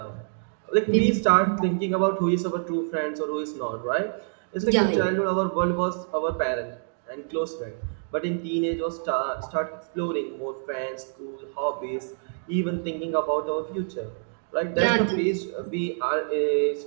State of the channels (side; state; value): left; silent; digital silence